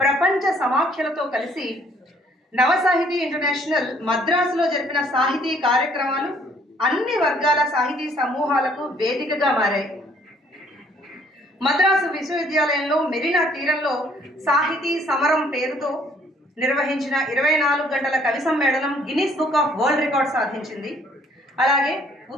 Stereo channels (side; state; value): both; normal; correlation 0.62